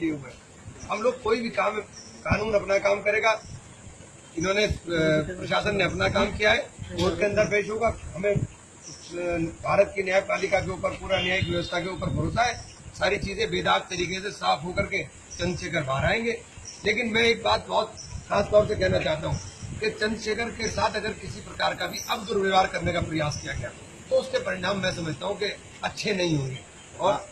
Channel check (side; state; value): both; identical; correlation 1.00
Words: लिए हुए हैं। हम लोग कोई भी काम, कानून अपना काम करेगा। इन्होंने, प्रशासन ने अपना काम किया है, कोर्ट के अंदर पेश होगा। हमें भारत की न्यायपालिका के ऊपर, पूरा न्यायिक व्यवस्था के ऊपर भरोसा है। सारी चीजें बेदाग तरीके से साफ होकर के चंद्रशेखर बाहर आएंगे। लेकिन मैं एक बात बहुत खास तौर से कहना चाहता हूँ कि चंद्रशेखर के साथ अगर किसी प्रकार का भी अब दुर्व्यवहार करने का प्रयास किया गया तो उसके परिणाम मैं समझता हूँ कि अच्छे नहीं होंगे। और